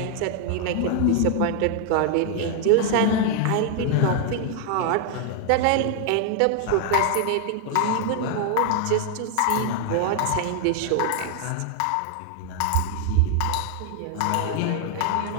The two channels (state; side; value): different; both; correlation 0.00